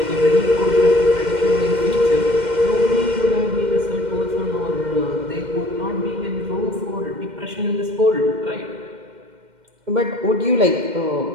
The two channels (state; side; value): late; left; 2.1 ms